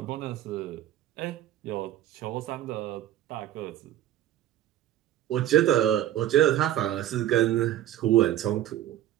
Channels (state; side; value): quieter; left; 12.5 dB